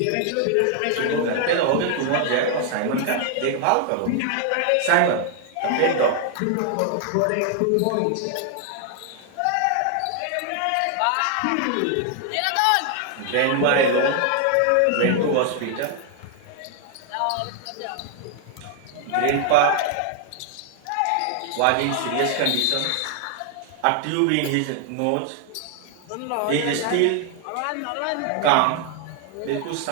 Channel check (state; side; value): different; both; correlation 0.00